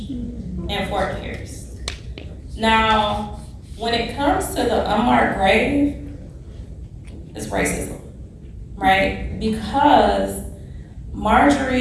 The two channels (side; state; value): both; identical; correlation 1.00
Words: in Fort Pierce. Now, when it comes to the unmarked grave, it's racism, right? Because